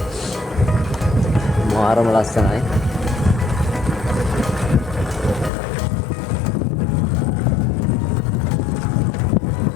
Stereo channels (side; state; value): right; drops out; at 5.5 s